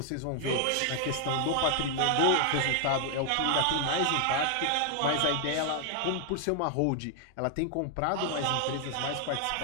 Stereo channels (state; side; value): different; both; correlation 0.00